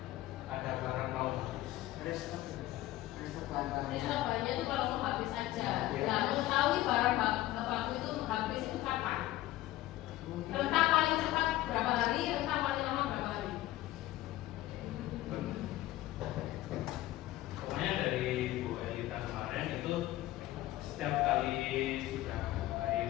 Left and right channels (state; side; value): quieter; right; 15.9 dB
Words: ada barang mau habis. Restock bahan-bahannya. Restock bahannya itu kalau mau habis aja. Iya. Nah, mengetahui barang baku itu habis itu kapan? Rentang paling cepat berapa hari, rentang paling lama berapa hari? Pokoknya dari Bu Elita kemarin itu setiap kali sudah